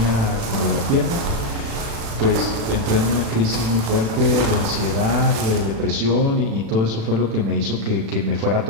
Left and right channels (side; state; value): left; late; 36 ms